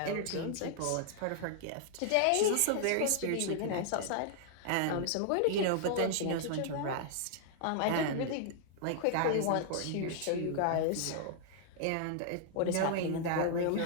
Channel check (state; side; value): different; both; correlation -0.01